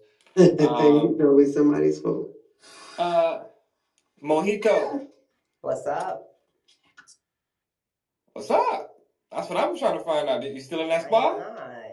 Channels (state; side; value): identical; both; correlation 1.00